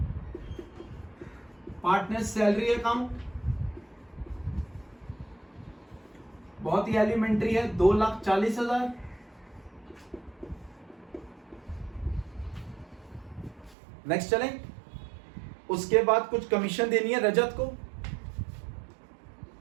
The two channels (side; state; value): left; drops out; at 13.8 s